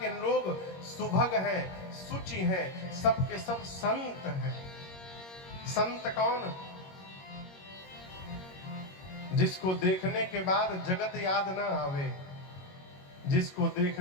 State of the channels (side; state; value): right; late; 22 ms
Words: लोग सुभग हैं, सुचि हैं, सबके सब संत हैं। संत कौन? जिसको देखने के बाद जगत याद ना आवे, जिसको